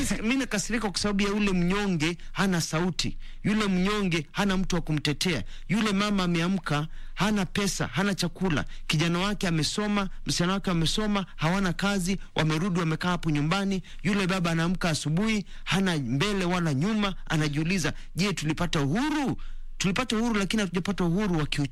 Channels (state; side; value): identical; both; correlation 1.00